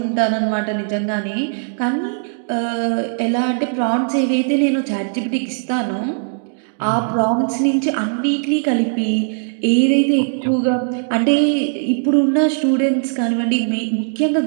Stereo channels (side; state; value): left; silent; digital silence